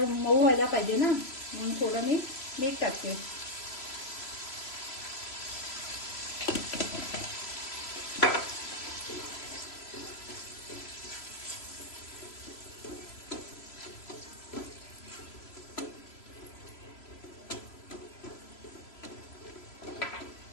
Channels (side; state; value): right; late; 3.0 ms